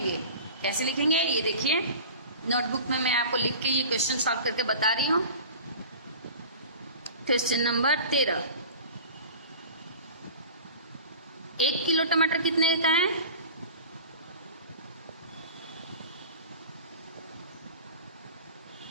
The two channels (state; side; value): inverted; both; correlation -0.39